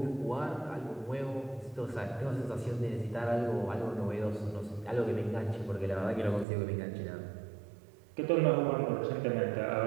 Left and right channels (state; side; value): drops out; left; at 6.5 s